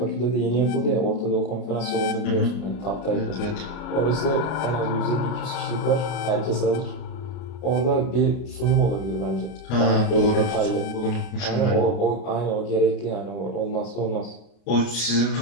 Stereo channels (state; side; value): late; right; 33 ms